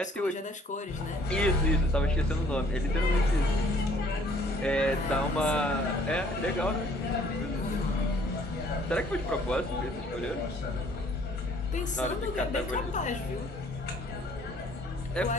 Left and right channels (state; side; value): normal; both; correlation 0.59